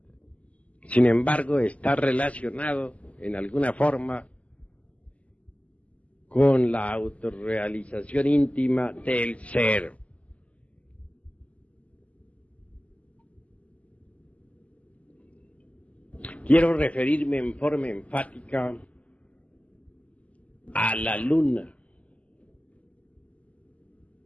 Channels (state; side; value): late; right; 0.068 ms